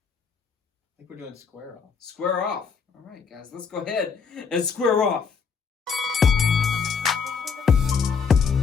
think we're doing Square Off. Square Off. All right, guys, let's go ahead and square off.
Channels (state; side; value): quieter; right; 5.9 dB